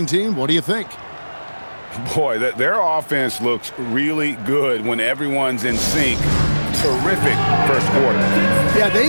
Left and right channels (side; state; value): both; inverted; correlation -1.00